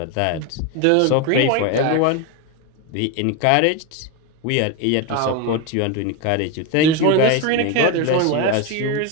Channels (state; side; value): different; both; correlation 0.03